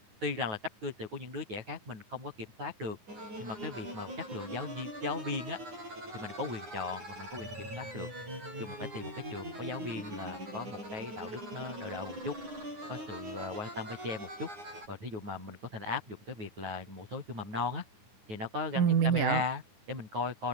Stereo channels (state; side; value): late; left; 9.6 ms